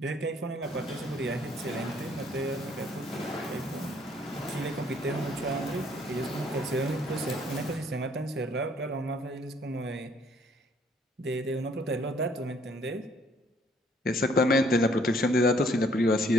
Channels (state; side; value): normal; both; correlation 0.63